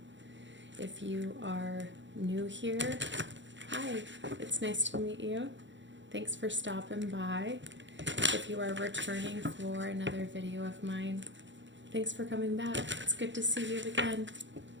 If you are new here, hi, it's nice to meet you. Thanks for stopping by. If you are returning for another video of mine, thanks for coming back. It's good to see you again.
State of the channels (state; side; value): late; left; 0.54 ms